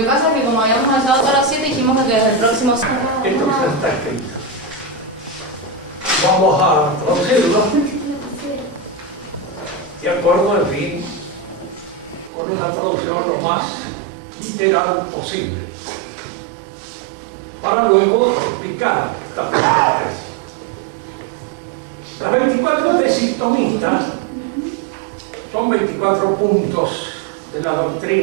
que pasa es que como habíamos avanzado hasta las 7, dijimos que desde el próximo... Esto ya está escrito. Vamos a traducirlo de acuerdo, en fin, con una traducción lo más literal posible, para luego explicar esta primera tesis. Las 24 tesis tomistas son 24 puntos de la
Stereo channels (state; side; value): drops out; left; at 12.3 s